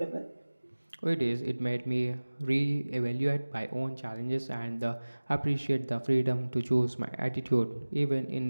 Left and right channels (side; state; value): both; inverted; correlation -1.00